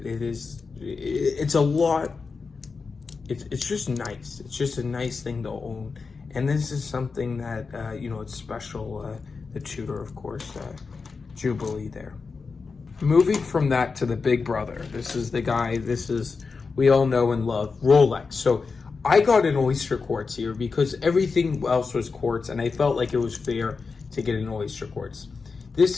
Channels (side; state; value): right; quieter; 4.7 dB